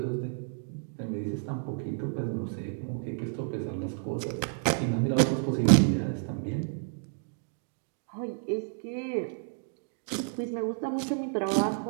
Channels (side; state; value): left; silent; digital silence